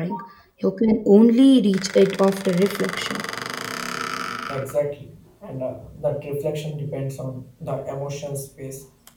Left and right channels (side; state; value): both; identical; correlation 1.00